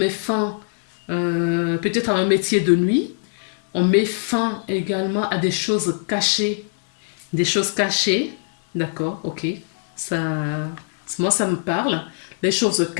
fin peut-être à un métier de nuit. On met fin également à des choses cachées. Des choses cachées. D'accord, ok. Moi, ça me parle. Les choses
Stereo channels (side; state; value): right; silent; digital silence